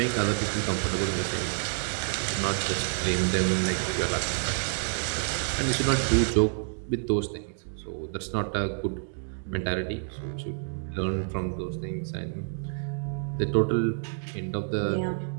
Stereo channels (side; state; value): left; silent; 59 dB below the other